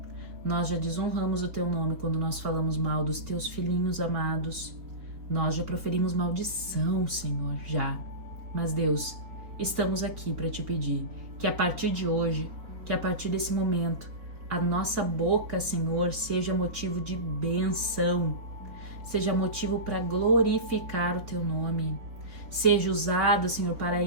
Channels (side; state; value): left; late; 4.2 ms